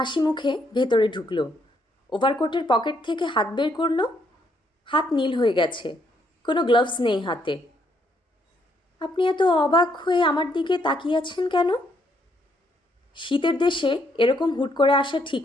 মুখে ভেতরে ঢুকলো। ওভারকোটের পকেট থেকে হাত বের করলো। হাত নীল হয়ে গেছে, কোনো গ্লাভস নেই হাতে। আপনি এত অবাক হয়ে আমার দিকে তাকিয়ে আছেন কেন? শীতের দেশে এরকম হুট করে আসা ঠিক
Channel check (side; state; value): both; normal; correlation 0.72